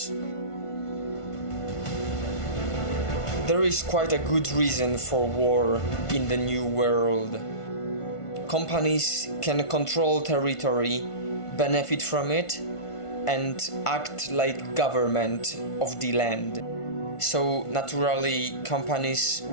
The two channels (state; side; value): late; right; 1.5 ms